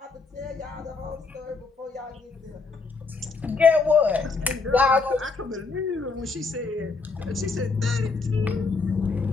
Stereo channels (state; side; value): quieter; right; 4.2 dB